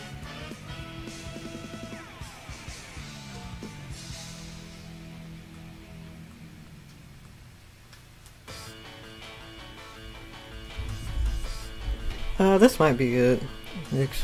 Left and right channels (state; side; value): identical; both; correlation 1.00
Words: This might be good. Make